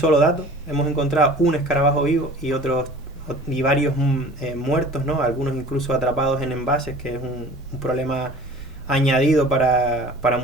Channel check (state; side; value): normal; both; correlation 0.44